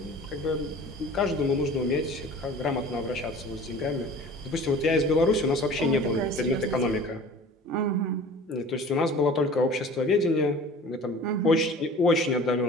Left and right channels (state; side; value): normal; both; correlation 0.43